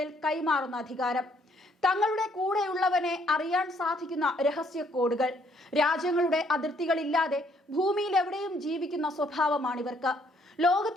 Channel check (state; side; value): normal; both; correlation 0.67